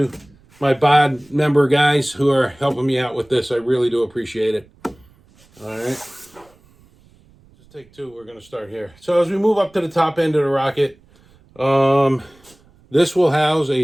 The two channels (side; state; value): right; noise; rumble, 30 dB below the sound